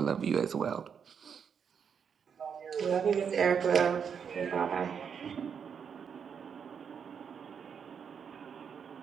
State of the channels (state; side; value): quieter; left; 7.1 dB